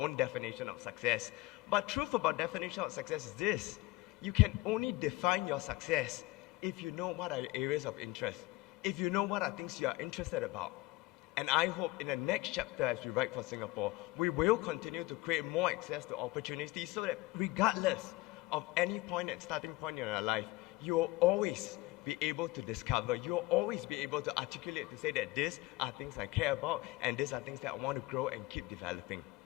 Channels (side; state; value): right; quieter; 20.0 dB